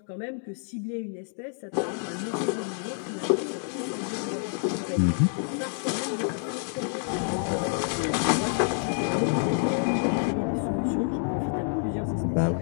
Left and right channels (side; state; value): right; silent; 59 dB below the other